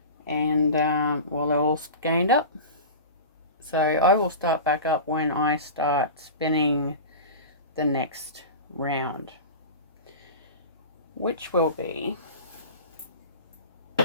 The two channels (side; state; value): both; inverted; correlation -0.32